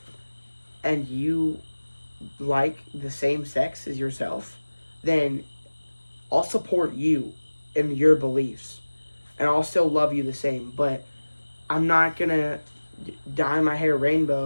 and you like the same sex as yourself, then I'll support you in your beliefs. And I'll still love you the same. But I'm not going to dye my hair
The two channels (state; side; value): inverted; both; correlation -1.00